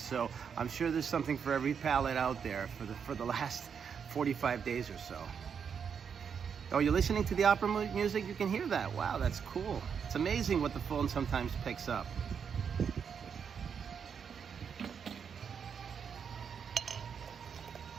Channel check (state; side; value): quieter; left; 6.9 dB